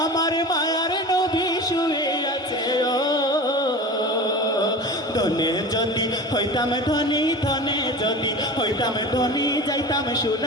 আমার মায়ার নবী শুয়ে আছে। ও ধনে যদি হইতাম ধনী, ধনে যদি হইতাম ধনী, যাইতাম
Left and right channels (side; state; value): both; normal; correlation 0.33